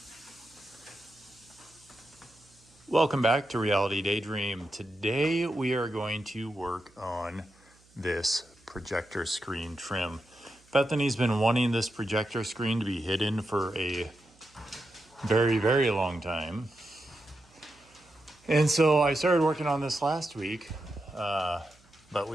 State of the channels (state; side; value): noise; right; hum, 30 dB below the sound